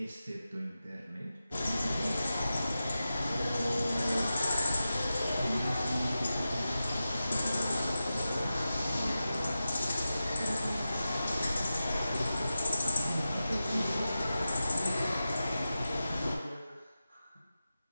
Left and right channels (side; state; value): both; inverted; correlation -0.93